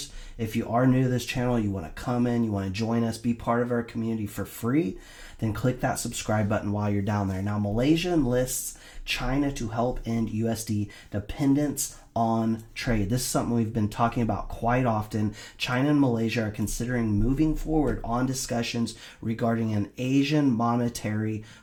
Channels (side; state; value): both; identical; correlation 1.00